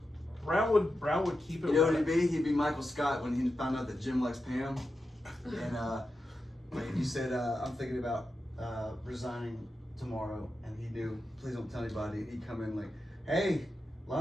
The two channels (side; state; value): both; normal; correlation 0.89